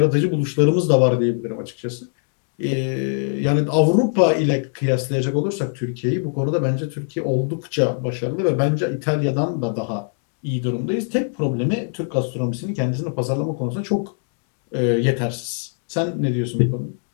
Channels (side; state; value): right; silent; digital silence